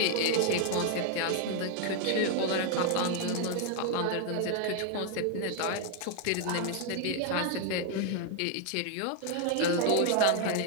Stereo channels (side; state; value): both; different; correlation 0.00